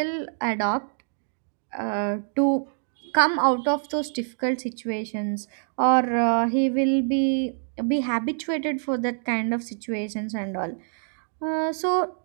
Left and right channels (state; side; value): silent; left; 61 dB below the other